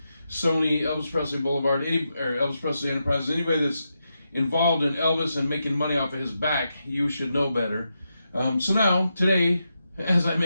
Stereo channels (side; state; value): both; inverted; correlation -0.86